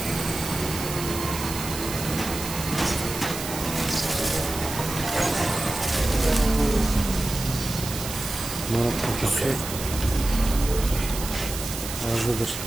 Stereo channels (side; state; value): right; noise; hiss, 7 dB below the sound